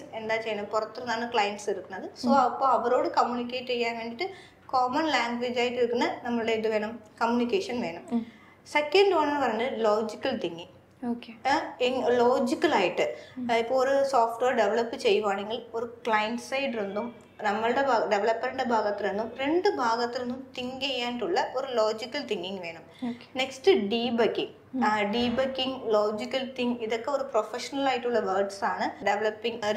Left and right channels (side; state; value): both; identical; correlation 1.00